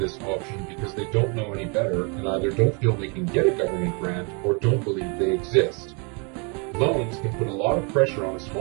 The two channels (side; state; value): left; quieter; 34.3 dB